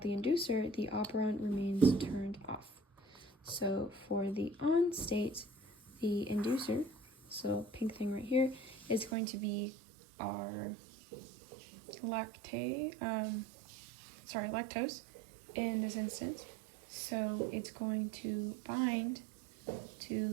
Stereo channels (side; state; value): left; drops out; at 9.2 s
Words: the inducer, the operon remains turned off. So for the on state, the inducer, so pink thing right here, is going to be our lactose in this instance. So it's going to bind